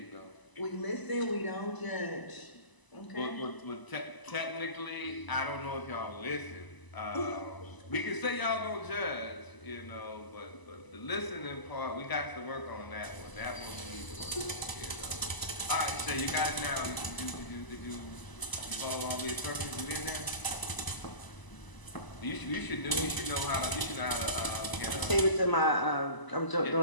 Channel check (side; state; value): right; late; 1.0 ms